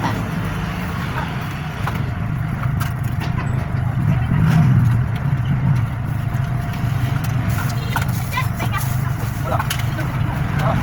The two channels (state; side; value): identical; both; correlation 1.00